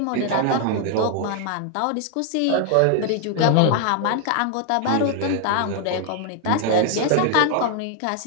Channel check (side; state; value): both; different; correlation 0.00